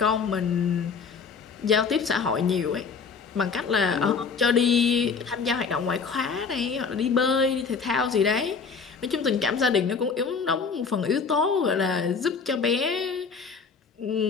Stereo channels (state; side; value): quieter; right; 5.4 dB